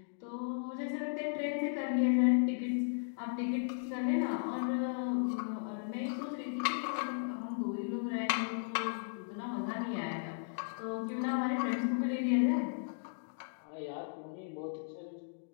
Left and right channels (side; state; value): right; silent; digital silence